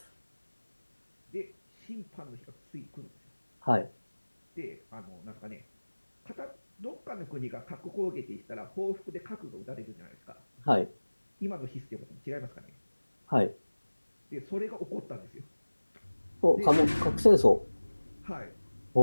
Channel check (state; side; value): inverted; both; correlation -1.00